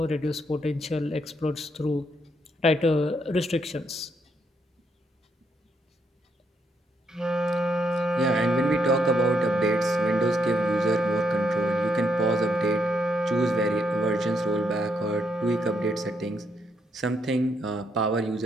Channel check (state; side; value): normal; both; correlation 0.76